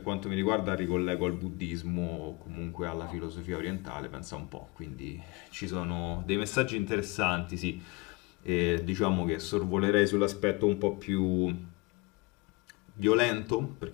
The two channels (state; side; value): quieter; right; 25.2 dB